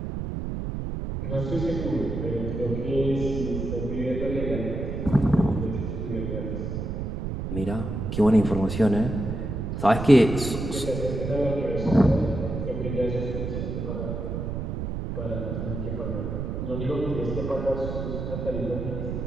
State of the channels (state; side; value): noise; right; rumble, 4 dB below the sound